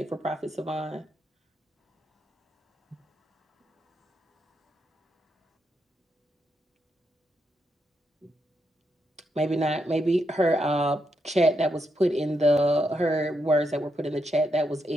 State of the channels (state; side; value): normal; both; correlation 0.82